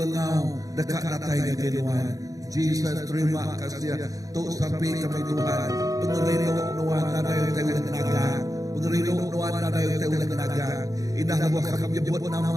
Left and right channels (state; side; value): late; left; 0.17 ms